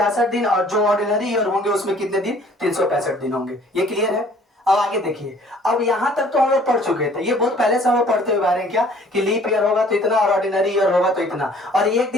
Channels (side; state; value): both; normal; correlation 0.55